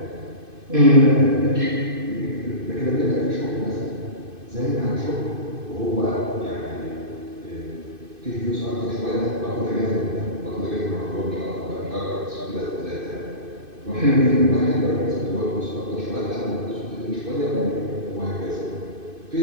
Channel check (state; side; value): late; left; 2.5 ms